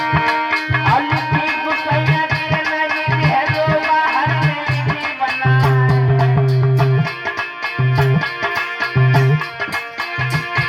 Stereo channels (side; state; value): both; identical; correlation 1.00